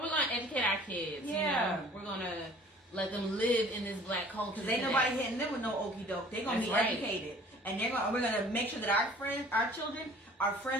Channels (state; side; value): normal; both; correlation 0.50